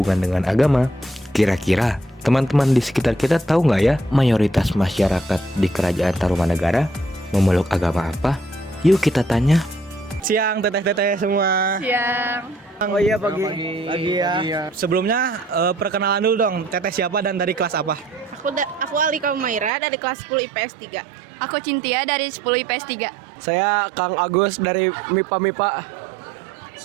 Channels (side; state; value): left; drops out; at 19.7 s